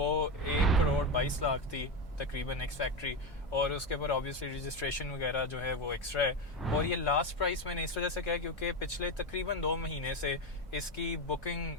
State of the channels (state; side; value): normal; both; correlation 0.14